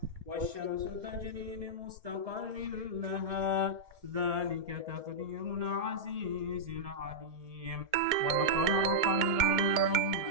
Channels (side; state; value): left; late; 2.2 ms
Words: والشمس تجري لمستقر لها ذلك تقدير العزيز العليم. والقمر قدرناه